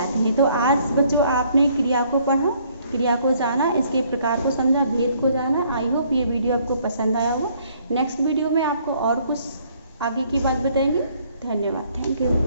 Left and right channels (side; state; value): both; inverted; correlation -0.64